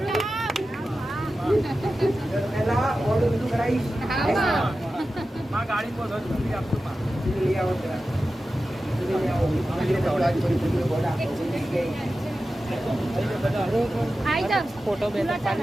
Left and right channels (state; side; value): normal; both; correlation 0.93